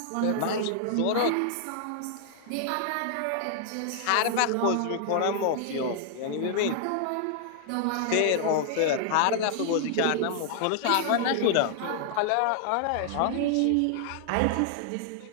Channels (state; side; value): different; both; correlation -0.01